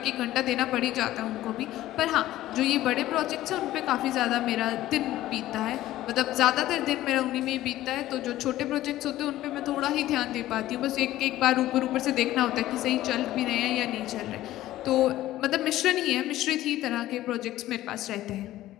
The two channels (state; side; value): quieter; right; 14.9 dB